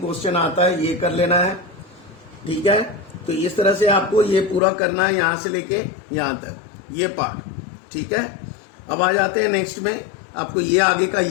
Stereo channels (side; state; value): right; drops out; at 4.6 s